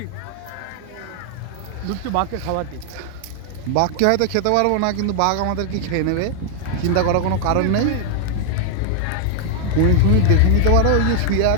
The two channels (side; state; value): both; different; correlation 0.00